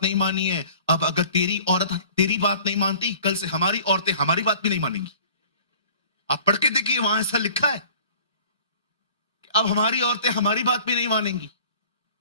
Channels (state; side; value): inverted; both; correlation -0.49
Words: नहीं मानी है, अब अगर तेरी औरत तेरी बात नहीं मानती, कल से हमारी औरतें हमारी बात भी नहीं मानेंगी। आप पढ़ के देखिए, वहां ऐसा लिखा है कि अब हमारी औरतें हमारी बात भी नहीं मानेंगी।